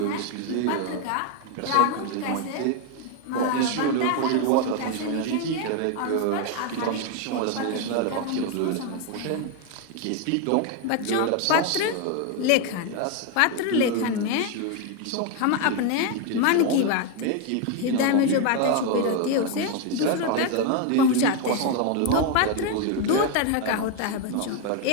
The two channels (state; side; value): different; both; correlation 0.01